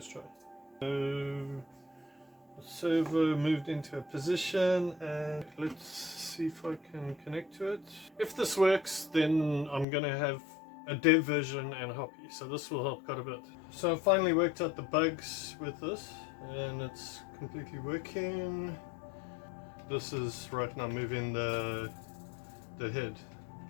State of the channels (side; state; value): right; drops out; at 9.9 s